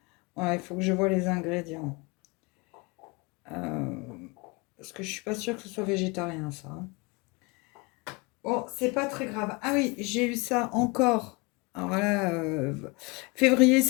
Voilà, il faut que je vois les ingrédients. Parce que je suis pas sûre que ce soit végétarien, ça. Bon, c'est pas très grave. Ah oui, j'ai eu ça encore. Alors là, février,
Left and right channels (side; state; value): right; quieter; 26.9 dB